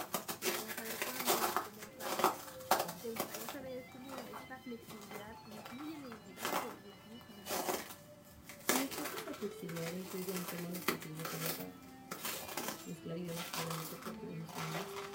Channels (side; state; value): both; identical; correlation 1.00